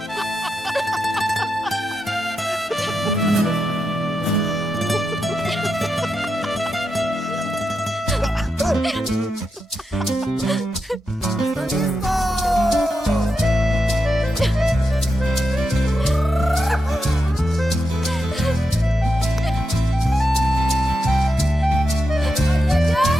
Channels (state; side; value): normal; both; correlation 0.87